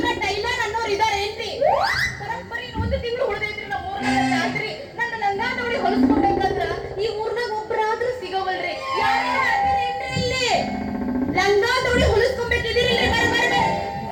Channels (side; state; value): both; identical; correlation 1.00